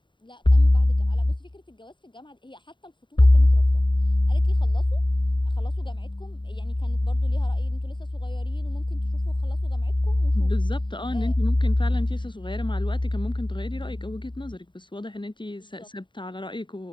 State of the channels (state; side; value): late; right; 0.23 ms